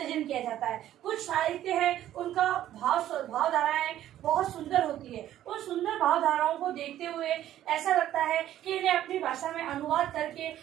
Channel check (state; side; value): quieter; left; 12.4 dB